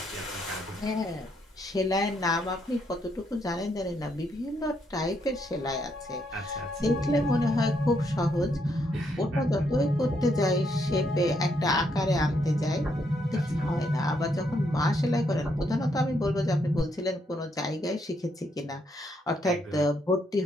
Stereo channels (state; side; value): normal; both; correlation 0.75